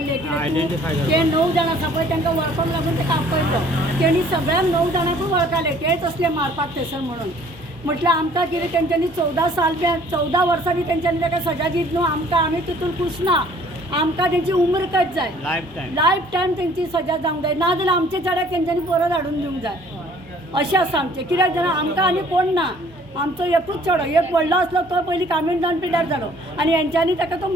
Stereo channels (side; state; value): both; normal; correlation 0.56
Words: Identify ते 9 जाण आसा पळय तांकां वळखूंक लागून ताका आपयलो तेणी सगळ्यांक 9 जाणांकूय वळखले तेच असले मारपाक थंयसर म्हणून म्हटल्यार आमकां कितें तेंच्यांनी 14 वर्सां बी तेंच्यांनी ताका सजा दीत न्हू आमकां आमी तितून खुश ना आमकां तेंची उम्र कट जाय लायफ टायम तेंची सजा जावंक जाय नाजाल्यार आमचे चेड्याक तेंच्यांनी परत हाडून दिवंक जाय अशें आसा आमचें कित्याक जाणां आमकां आनी कोण ना आमचो एकूच चेडो एक व्हडलो आसलो तो पयलीं कामीण जावन पिड्यार जालो आनी हेंच्यांनी ताका तो